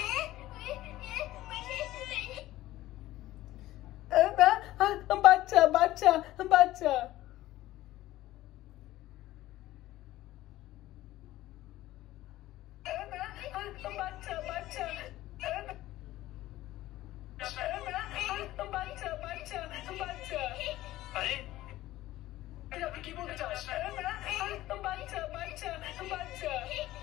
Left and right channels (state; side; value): quieter; right; 15.8 dB